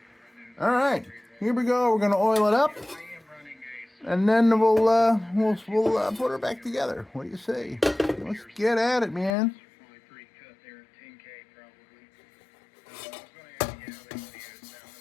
All right, here we go. We're gonna oil it up, and then we'll put her back together. What do you say? Let's get at it, man.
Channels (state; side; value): drops out; right; at 9.3 s